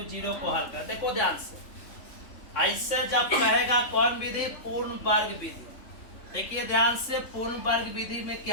0 को हल कर। देखो ध्यान से, ऐसे जब कहेगा कौन विधि, पूर्ण वर्ग विधि। देखिए ध्यान से, पूर्ण वर्ग विधि में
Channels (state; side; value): late; right; 3.5 ms